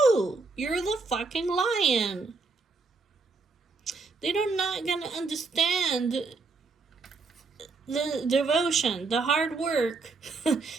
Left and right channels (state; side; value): quieter; left; 4.0 dB